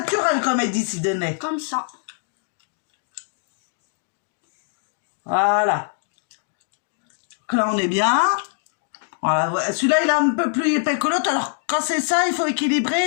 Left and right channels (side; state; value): right; silent; digital silence